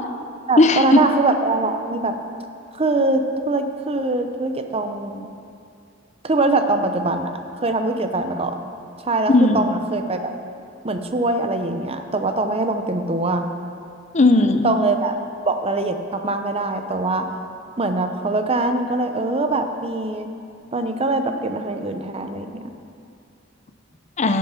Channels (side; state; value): both; normal; correlation 0.33